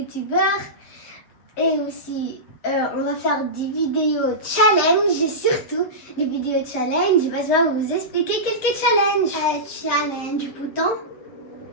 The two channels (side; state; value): right; late; 8.0 ms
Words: Et aussi, on va faire des vidéos challenge, et surtout des vidéos challenge. Basma va vous expliquer quelques challenges. Challenge bouton.